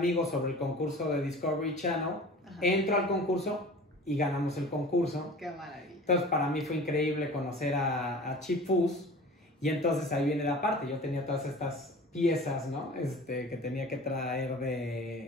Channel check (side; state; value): both; normal; correlation 0.40